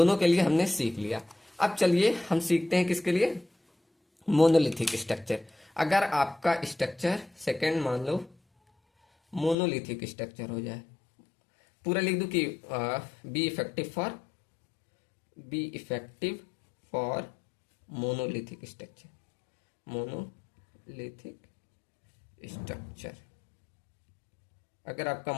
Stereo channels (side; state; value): right; drops out; at 9.6 s